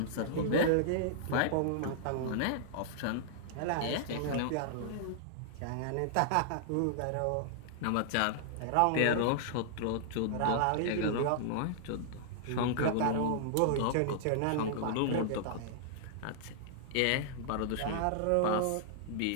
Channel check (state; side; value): different; both; correlation -0.01